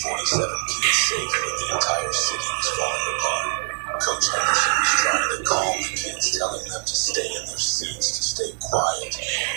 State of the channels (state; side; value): silent; left; 63 dB below the other